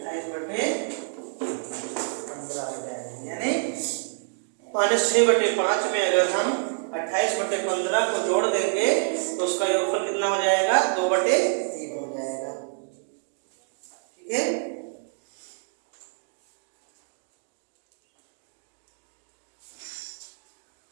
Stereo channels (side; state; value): left; silent; digital silence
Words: 28/15 हो जाएगी। यानी -6/5 में अगर हम 28/15 को जोड़ देंगे तो उसका योगफल कितना हो जाएगा, 2/3 हो जाएगा। ठीक है,